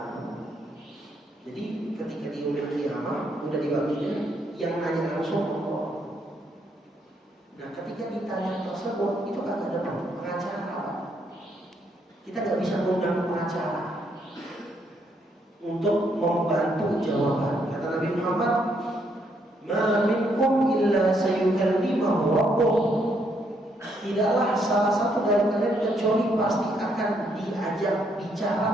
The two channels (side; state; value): both; normal; correlation 0.73